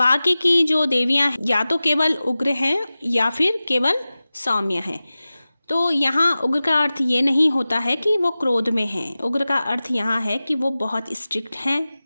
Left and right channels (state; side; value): inverted; both; correlation -0.96